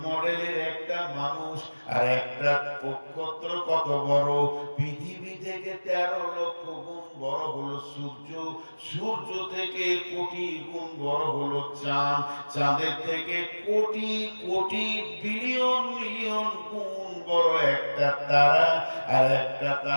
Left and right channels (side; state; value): both; inverted; correlation -1.00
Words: মডেলের একটা মানুষ। আর একটা নক্ষত্র কত বড়? পৃথিবী থেকে 13 লক্ষ গুণ বড় হলো সূর্য, সূর্য থেকে কোটি গুণ বড় হলো চাঁদ, চাঁদের থেকে কোটি কোটি বিলিয়ন মিলিয়ন গুণ বড় একটা তারা। আর একটা